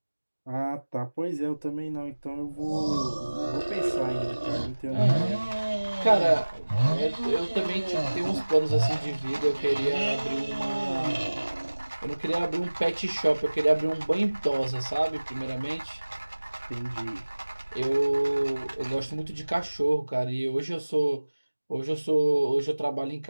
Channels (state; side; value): inverted; both; correlation -1.00